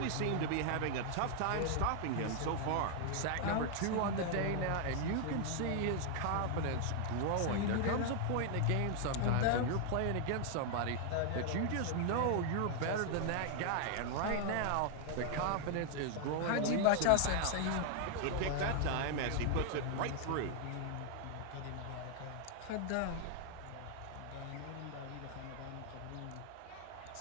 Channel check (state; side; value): different; both; correlation 0.00